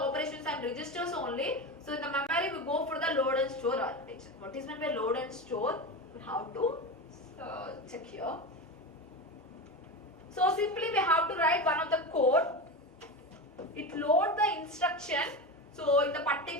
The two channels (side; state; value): both; normal; correlation 0.22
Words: and registers only. So in the memory we go for the load and store architecture. What is meant by load and store? we have to check here. So simply we have to write one of the code. It load the instruction. So in the